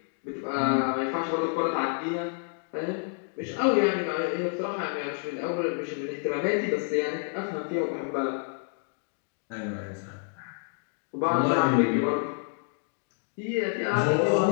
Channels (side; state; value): right; silent; 56 dB below the other